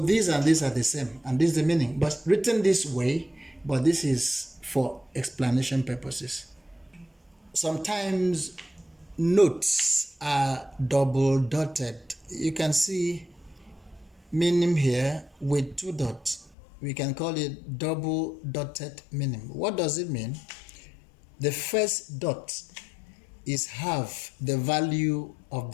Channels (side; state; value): right; drops out; at 16.6 s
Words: these and these are the same, and this is the meaning, but written this way, but this is for explanation purposes. Sometimes notes are double dotted. You can see minim here with 2 dots. We can call it double dotted minim. What does it mean? The first dot is half the value of